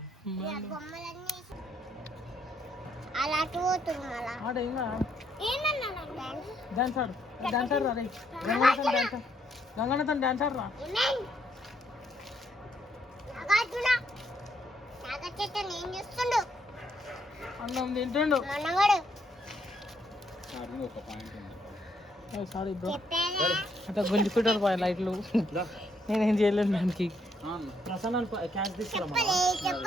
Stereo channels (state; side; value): normal; both; correlation 0.73